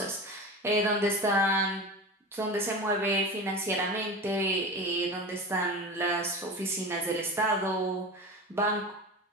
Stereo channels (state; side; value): normal; both; correlation 0.30